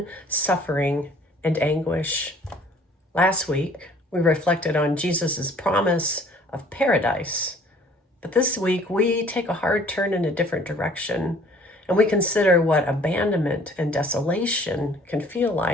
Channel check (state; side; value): normal; both; correlation 0.55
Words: suffering and anguish. Last week, we reflected on Jesus's promise of paradise. But this week, we take a hard turn in a different direction, and we consider what abandonment and desolation can feel